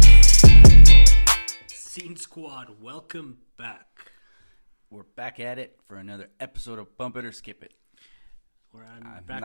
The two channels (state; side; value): inverted; both; correlation -1.00